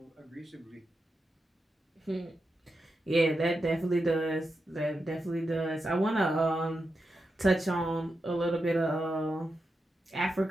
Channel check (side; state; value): both; normal; correlation 0.88